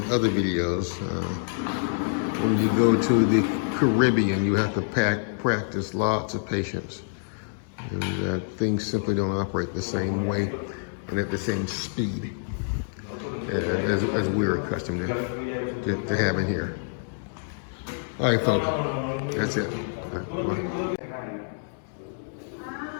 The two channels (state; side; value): silent; right; digital silence